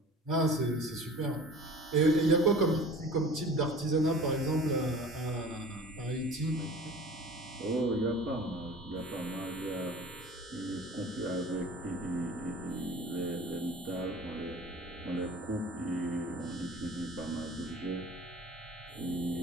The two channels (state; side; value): normal; both; correlation 0.42